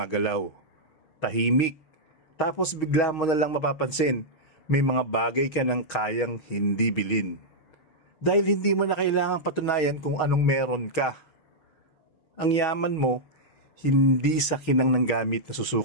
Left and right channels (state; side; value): late; right; 6.3 ms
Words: Tahimik. Tapos bigla mo na lang mapapansin, may mga bagay ka nang kayang hindi bilhin. Dahil hindi mo na kailangang patunayan kung anong meron ka. Ang yaman mo, hindi sa kinang ng gamit na